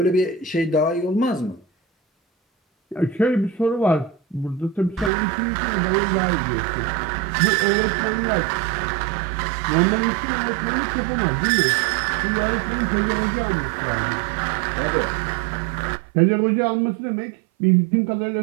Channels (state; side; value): drops out; left; at 5.1 s